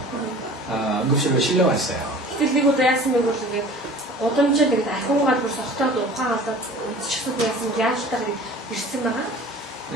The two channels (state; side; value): normal; both; correlation 0.43